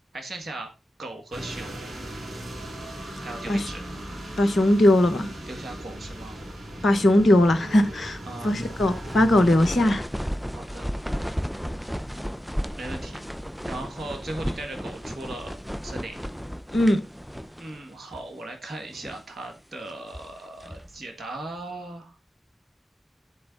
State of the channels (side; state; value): both; normal; correlation 0.90